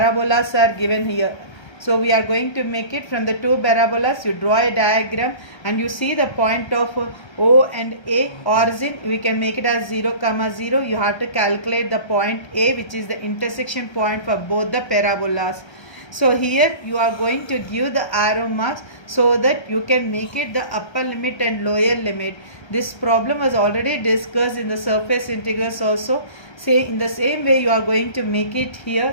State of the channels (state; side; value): late; right; 1.3 ms